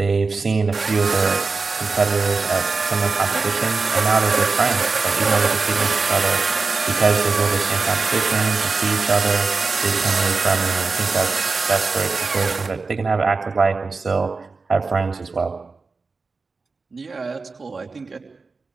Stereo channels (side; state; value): left; quieter; 4.2 dB